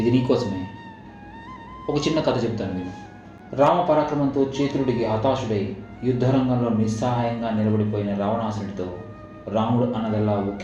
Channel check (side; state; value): both; identical; correlation 1.00